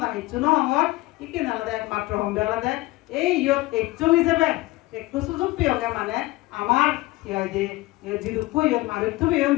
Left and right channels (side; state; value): right; quieter; 20.1 dB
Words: হিচু নহর ইকিনে আলাদা একমাত্র হম আলাদা এই ইয়ত একচুল হিসেবে একটু সুযোগ পেয়ে মানে আমার জিরুপুই মারুতু বেয়ন